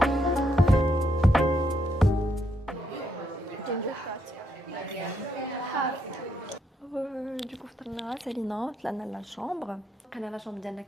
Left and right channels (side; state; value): both; normal; correlation 0.77